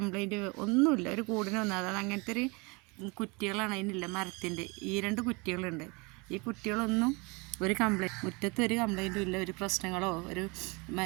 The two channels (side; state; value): left; quieter; 28.4 dB